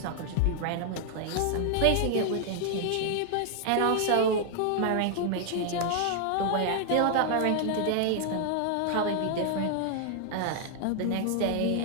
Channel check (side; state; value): both; different; correlation 0.00